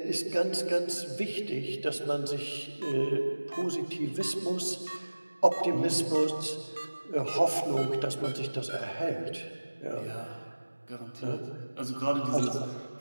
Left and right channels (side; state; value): both; inverted; correlation -1.00